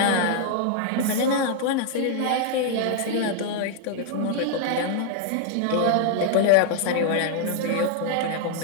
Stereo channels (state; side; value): different; both; correlation -0.01